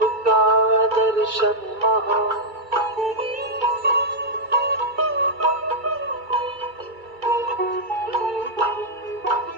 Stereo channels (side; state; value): left; late; 2.3 ms